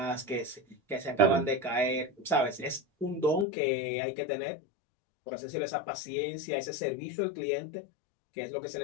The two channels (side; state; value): right; drops out; at 3.5 s